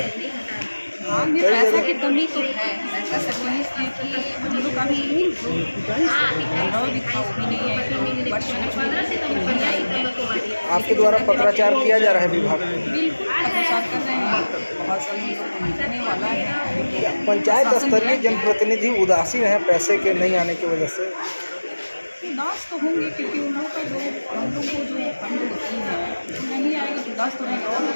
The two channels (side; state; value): both; inverted; correlation -1.00